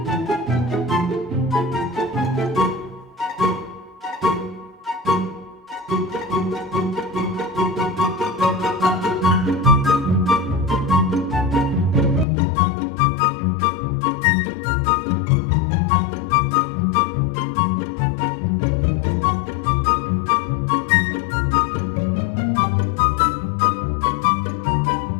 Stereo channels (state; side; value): drops out; right; at 12.2 s